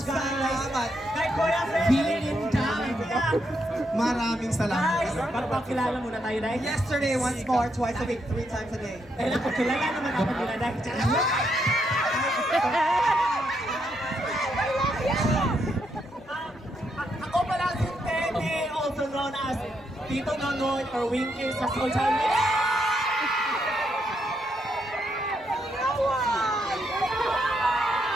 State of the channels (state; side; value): normal; both; correlation 0.78